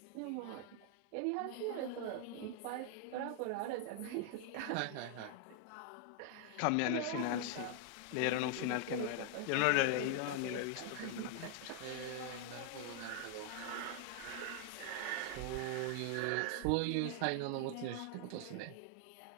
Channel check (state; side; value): different; both; correlation 0.00